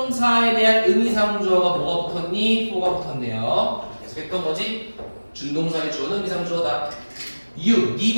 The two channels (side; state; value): both; inverted; correlation -1.00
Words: 대한 의미상주어가 뭐가 붙었니? for가 붙었네요. 계속했던 거지. 준동사의 주어는 의미상주어다. You,